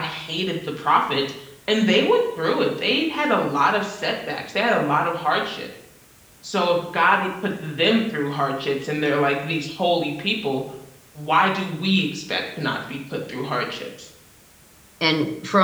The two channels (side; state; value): both; identical; correlation 1.00